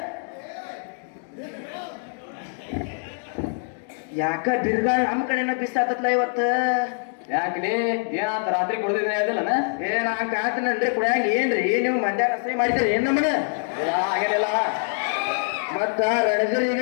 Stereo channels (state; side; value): silent; right; digital silence